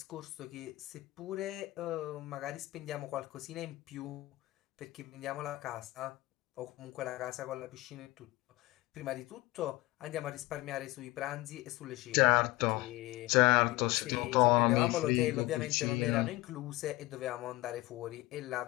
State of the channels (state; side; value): quieter; right; 19.9 dB